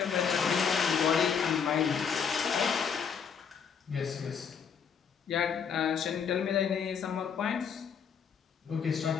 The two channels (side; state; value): right; quieter; 6.9 dB